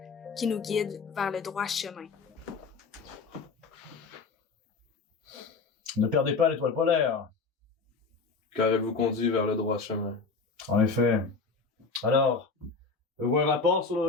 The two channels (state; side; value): quieter; right; 4.5 dB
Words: qui nous guide vers le droit chemin. Ne perdez pas l'étoile polaire. Car elle vous conduit vers le droit chemin. En effet. Alors, avez-vous un rapport sur le